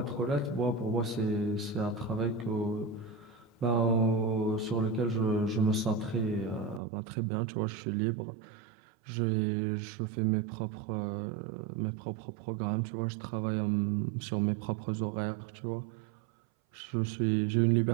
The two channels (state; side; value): drops out; left; at 6.8 s